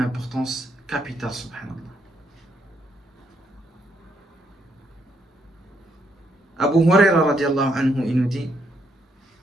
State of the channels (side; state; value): both; normal; correlation 0.75